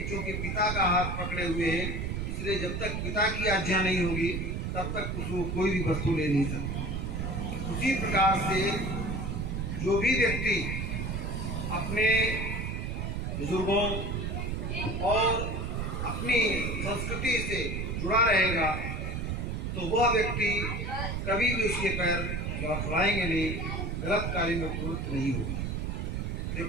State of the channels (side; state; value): right; noise; rumble, 2 dB below the sound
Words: चूंकि पिता का हाथ पकड़े हुए है, इसलिए जब तक पिता की आज्ञा नहीं होगी तब तक उसको कोई भी वस्तु ले नहीं सकता। उसी प्रकार से जो भी व्यक्ति अपने बुजुर्गों और अपनी संस्कृति से जुड़ा रहेगा तो वह व्यक्ति कभी भी उसके पैर लड़खड़ाएंगे नहीं, गलत कार्य में प्रवृत्त नहीं होगा।